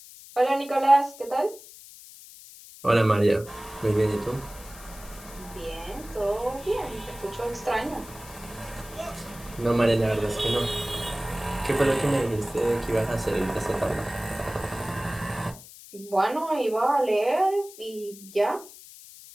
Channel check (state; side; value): noise; left; hiss, 18 dB below the sound